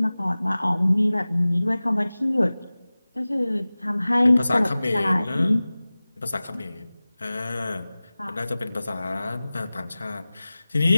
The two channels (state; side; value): inverted; both; correlation -0.98